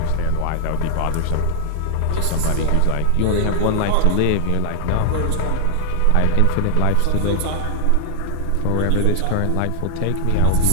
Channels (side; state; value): both; different; correlation 0.00